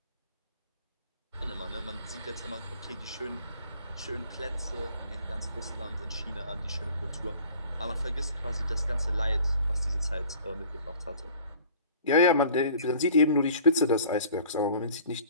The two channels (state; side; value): inverted; both; correlation -0.48